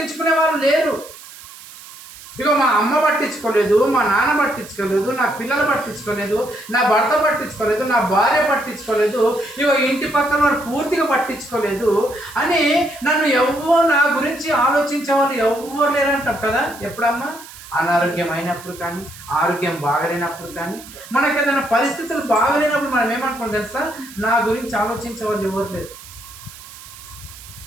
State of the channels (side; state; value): right; noise; hiss, 17 dB below the sound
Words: వాళ్ళు లేరు. ఇక మా అమ్మ పట్టించుకోలేదు, మా నాన్న పట్టించుకోలేదు, నా పిల్లలు పట్టించుకోలేదు, నా భర్త పట్టించుకోలేదు, నా భార్య పట్టించుకోలేదు, ఇక ఇంటి పక్కన వారు పూర్తిగా పట్టించుకోలేదు అని నన్ను ఎవ్వరు, నా గురించి ఆలోచించే వాళ్ళు ఎవ్వరు లేరంటారు కదా. ఎప్పుడమ్మా? అనారోగ్యం అయినప్పుడు కానీ, ఆరోగ్యం బాగలేనప్పుడు కానీ, మనకు ఏదైనా పరిస్థితులు బాగలేనప్పుడు మనం ఏమనుకుంటాం తెలుసా? నా గురించి ఆలోచించే వాళ్ళు ఎవరు లేరు.